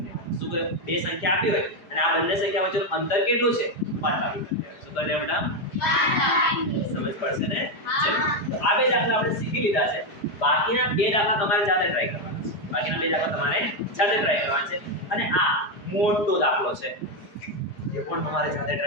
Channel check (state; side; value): late; right; 4.9 ms